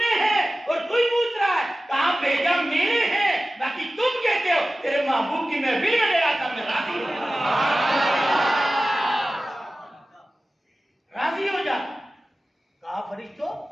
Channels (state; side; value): normal; both; correlation 0.96